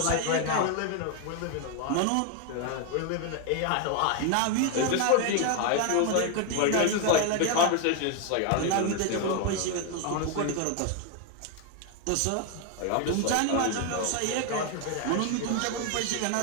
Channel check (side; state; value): both; different; correlation 0.01